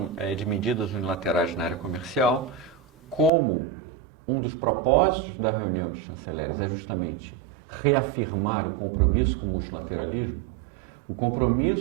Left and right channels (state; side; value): drops out; left; at 3.3 s